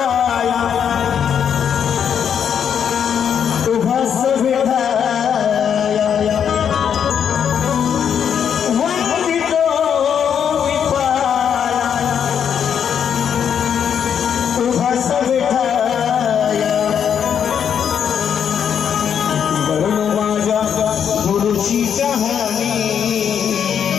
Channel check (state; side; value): quieter; right; 8.1 dB